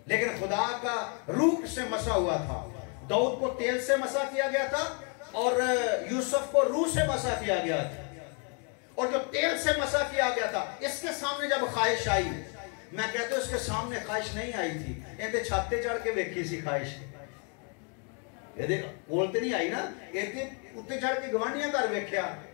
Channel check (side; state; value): right; quieter; 38.4 dB